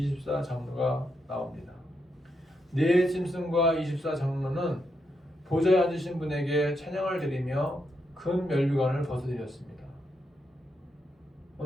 나옵니다. 네 짐승과 24장로는 보좌에 앉으신 분에게 찬양을 드리며 금 면류관을 벗어드렸습니다.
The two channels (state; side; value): normal; both; correlation 0.82